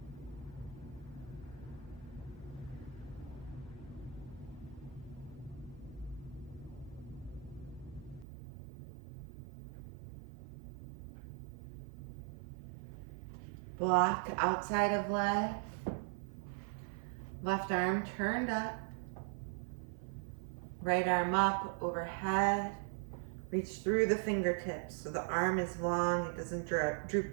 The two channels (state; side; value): drops out; left; at 8.2 s